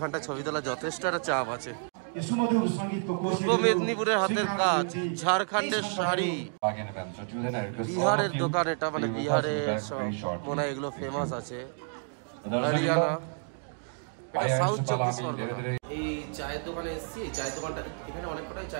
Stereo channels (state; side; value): silent; left; 58 dB below the other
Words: ছবি তোলা যথেষ্ট একটা চাপ আছে। পূর্ব মেদিনীপুরের হাতের কাজ, ঝাড়খণ্ডের শাড়ি, বিহারের দোকান, এটা মানে বিহারের সব মনে হয় এগুলো ফেমাস আছে, হরিয়ানা, এটা সাউথ 24 পরগনা। এই চায়ের দোকানে এসেছি। এই চায়ের দোকানটা, এখানে অনেক কটাই